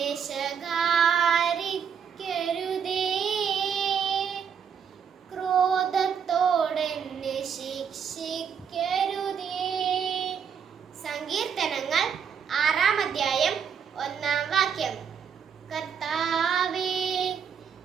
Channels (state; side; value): quieter; left; 7.3 dB